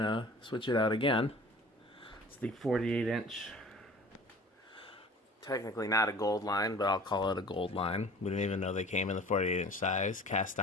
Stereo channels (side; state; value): both; normal; correlation 0.44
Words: switch it out again. It's the 48-inch, technically not a gold line, but I'll call it a gold line. We didn't even know they came in the 48-inch size, cast